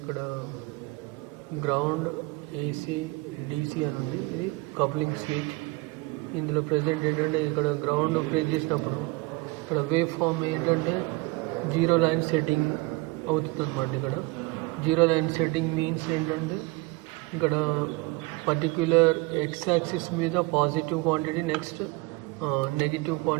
గ్రౌండ్ ఏసీ డీసీ అని ఉంది. ఇది కప్లింగ్ స్విచ్. ఇందులో ప్రజెంట్ ఏంటంటే ఇక్కడ గ్రౌండ్ ప్రెస్ చేసినప్పుడు ఇక్కడ వేవ్ ఫామ్ ఏంటంటే 0 లైన్ సెట్టింగ్ అవుతుంది అన్నమాట. ఇక్కడ 0 లైన్ సెట్టింగ్ మీన్స్ ఏంటంటే ఇక్కడ పర్టిక్యులర్ ఎక్స్ యాక్సిస్ మీద positive quantity, next negative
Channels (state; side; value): quieter; left; 22.9 dB